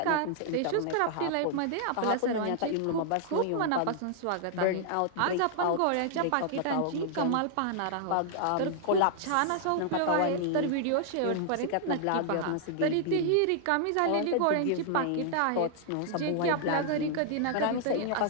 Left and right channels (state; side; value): different; both; correlation -0.01